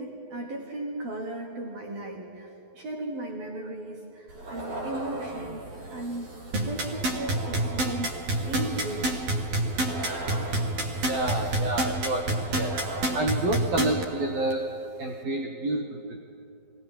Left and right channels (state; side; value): late; left; 12 ms